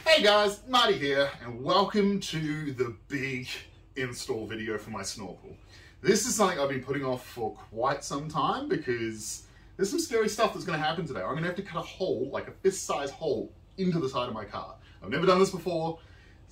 Hey guys, Marty here, and welcome to the big install video for my Snorkel. This is something I've been putting off for quite some time because there's some scary stuff that's going to happen today. I'm going to have to cut a hole, like a fist-sized hole, into the side of my car. I've never done this before.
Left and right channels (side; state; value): both; identical; correlation 1.00